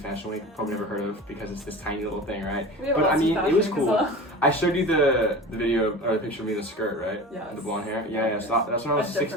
Week. Probably never heard of because it's this tiny little thing, right? But I mean, it was cool. I showed you the video or the picture of me in the skirt, right? Yeah. The blonde hair. Yeah. So that's when I was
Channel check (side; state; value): both; normal; correlation 0.34